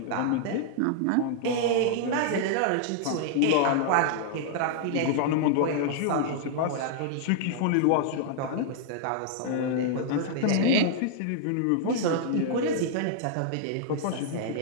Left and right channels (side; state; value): both; different; correlation -0.01